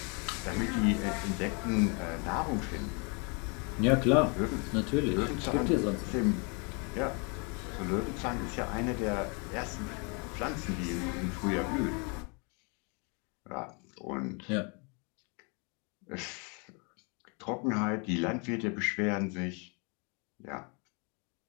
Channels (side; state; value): right; quieter; 33.7 dB